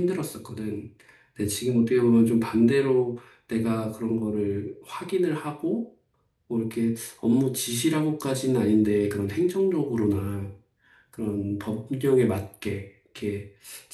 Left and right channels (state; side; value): identical; both; correlation 1.00